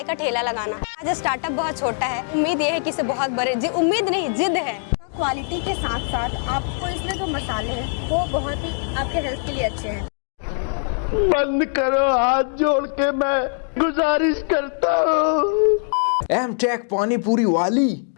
का ठेला लगाना। आज स्टार्टअप बहुत छोटा है, उम्मीद ये है कि इसे बहुत बड़े, उम्मीद नहीं जिद है। क्वालिटी के साथ साथ आपको इसमें जो मसाले हैं वो बहुत ही आपके हेल्थ के लिए अच्छे हैं। बंद करो, हाथ जोड़ के मैं गुजारिश करता हूँ। एमटेक पानी पूरी वाली।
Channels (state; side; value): silent; right; digital silence